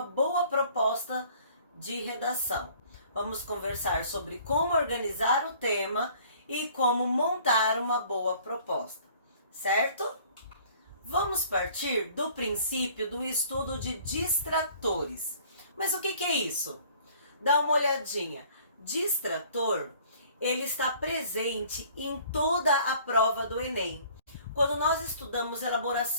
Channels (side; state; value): both; inverted; correlation -0.54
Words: boa proposta de redação. Vamos conversar sobre como organizar o tema e como montar uma boa proposta, certo? Vamos partir do princípio do estudo de distratores. Mas o que é isso? Dá uma olhadinha. Distrator, ele está presente em toda a prova do Enem. Quando nós estudamos